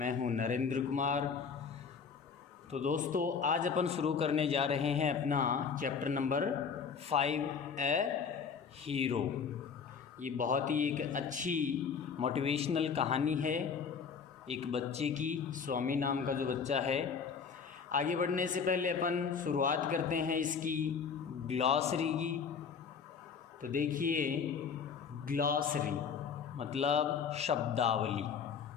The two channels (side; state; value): right; quieter; 6.2 dB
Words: हूं नरेंद्र कुमार। तो दोस्तों, आज अपन शुरू करने जा रहे हैं अपना चैप्टर नंबर 5 ए हीरो। ये बहुत ही एक अच्छी मोटिवेशनल कहानी है एक बच्चे की, स्वामी नाम का जो बच्चा है। आगे बढ़ने से पहले अपन शुरुआत करते हैं इसकी ग्लॉसरी की। तो देखिए, ग्लॉसरी मतलब शब्दावली।